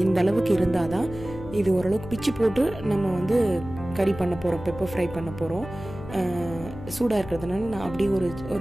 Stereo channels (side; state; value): left; noise; hum, 13 dB below the sound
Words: இந்த அளவுக்கு இருந்தால் தான் இது ஓரளவுக்கு பிச்சு போட்டு நம்ம வந்து கறி பண்ண போகிறோம், பெப்பர் ஃப்ரை பண்ண போகிறோம். சூடாக இருக்கிறதுனால நான் அப்படியே